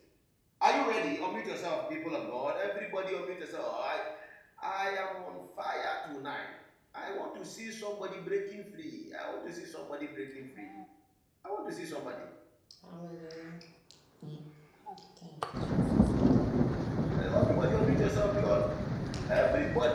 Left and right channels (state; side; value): identical; both; correlation 1.00